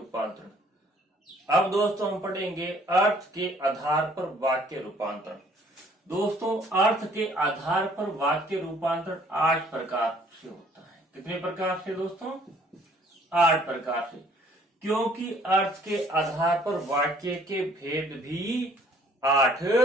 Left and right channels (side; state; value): both; normal; correlation 0.59